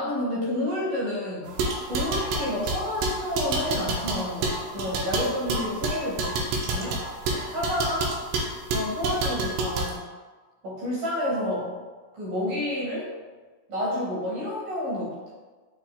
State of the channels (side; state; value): left; late; 16 ms